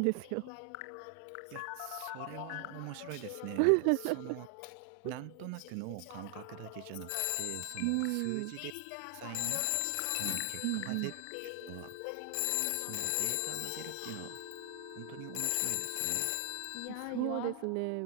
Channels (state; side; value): different; both; correlation 0.00